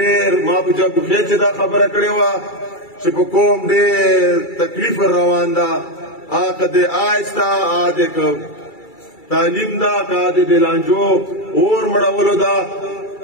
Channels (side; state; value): right; late; 2.3 ms